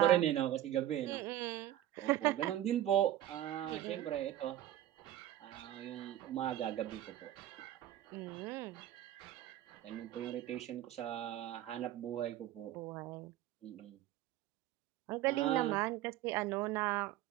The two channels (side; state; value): left; quieter; 13.1 dB